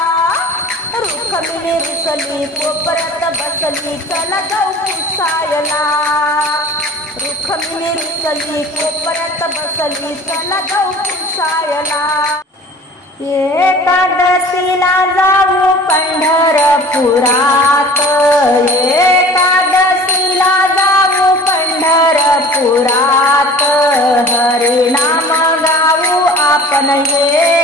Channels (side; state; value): both; normal; correlation 0.44